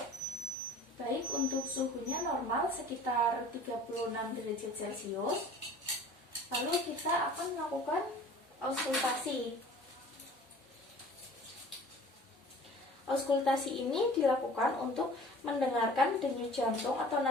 Baik, untuk suhunya normal sekitar 36 derajat Celcius. Lalu kita akan melakukan auskultasi. Auskultasi ini dilakukan untuk mendengarkan denyut jantung atau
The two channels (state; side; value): normal; both; correlation 0.45